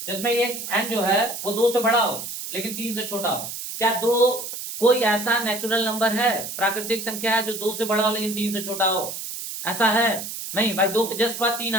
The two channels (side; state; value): right; noise; hiss, 7 dB below the sound